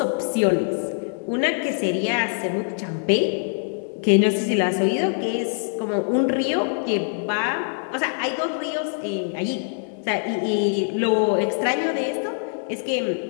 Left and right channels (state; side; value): silent; right; digital silence